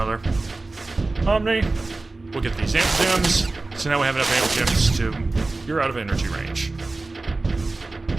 Omni. We'll get these amp gems. So now we have enough amp gems to... You're out of energy range.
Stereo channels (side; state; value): left; quieter; 3.3 dB